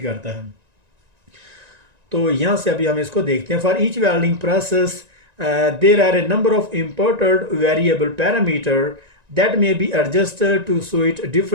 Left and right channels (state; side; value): late; left; 1.9 ms